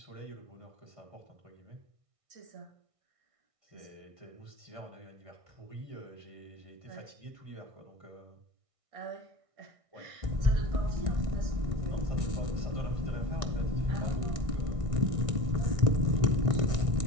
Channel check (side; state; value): left; late; 1.6 ms